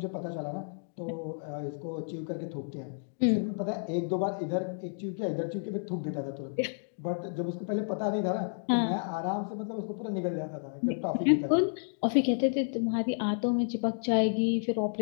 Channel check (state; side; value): silent; right; digital silence